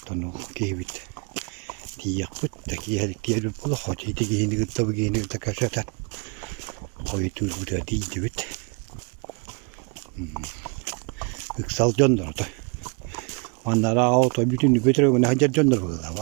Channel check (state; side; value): quieter; left; 34.0 dB